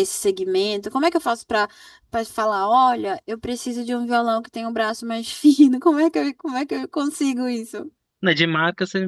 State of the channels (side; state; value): both; identical; correlation 1.00